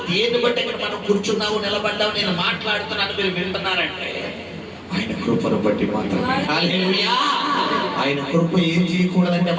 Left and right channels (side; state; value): both; identical; correlation 1.00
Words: దేన్ని బట్టి ఇక్కడ మనం కూర్చున్నాము, నిలబడ్డాము, నేను మాట్లాడుతున్నాను, మీరు వింటున్నారంటే ఆయన కృపను బట్టి మాత్రమే. హల్లెలూయా. ఆయన కృప ఏం చేయకూడదంటే